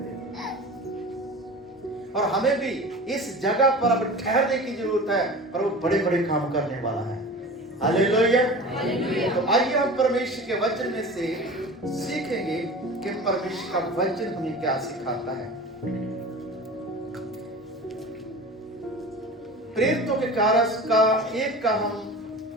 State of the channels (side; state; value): both; normal; correlation 0.36